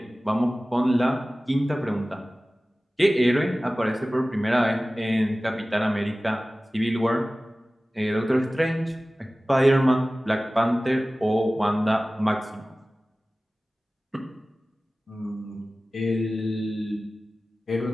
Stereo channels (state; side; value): normal; both; correlation 0.97